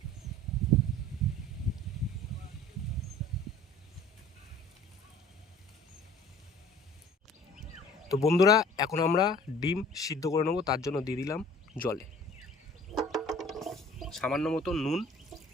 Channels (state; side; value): normal; both; correlation 0.49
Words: তো বন্ধুরা এখন আমরা ডিম সিদ্ধ করে নেবো, তার জন্য দিয়ে দিলাম জলে সামান্য মতো নুন।